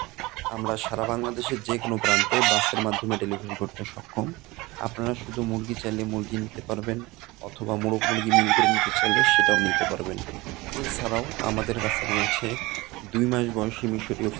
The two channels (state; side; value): quieter; left; 21.8 dB